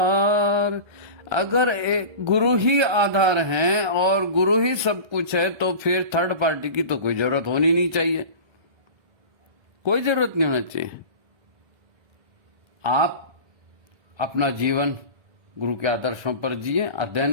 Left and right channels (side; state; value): left; late; 1.3 ms